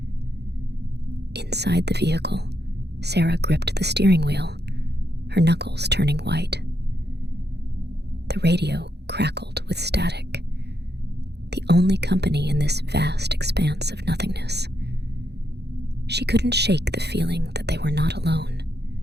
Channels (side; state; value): left; late; 0.48 ms